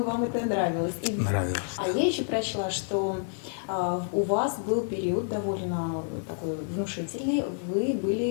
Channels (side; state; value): right; silent; digital silence